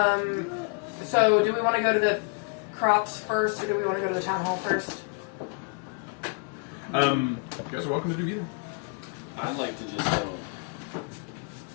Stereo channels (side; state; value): right; quieter; 36.0 dB